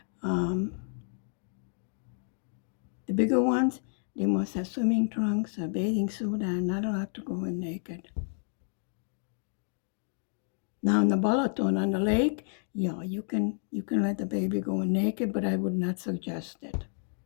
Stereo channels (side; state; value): right; silent; digital silence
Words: The bigger ones, they must have swimming trunks, a bathing suit, and not allowed to go in naked. Now in the Balaton on the lake, yeah, you can let the baby go in naked, but I would not suggest it.